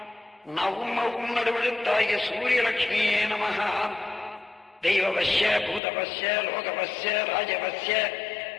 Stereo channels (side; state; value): right; drops out; at 5.8 s